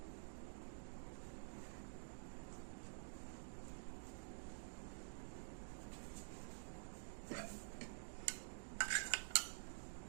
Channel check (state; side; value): silent; left; digital silence